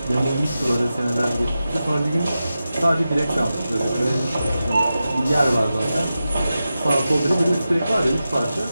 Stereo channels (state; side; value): inverted; both; correlation -0.92